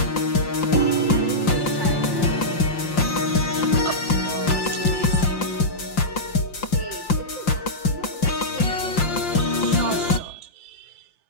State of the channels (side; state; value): right; late; 5.7 ms